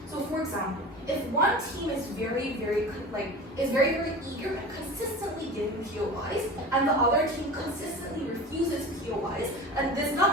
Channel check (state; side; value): normal; both; correlation 0.34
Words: So for example, if one team is very eager and consistently giving POIs, and the other team consistently refuses POIs, and this does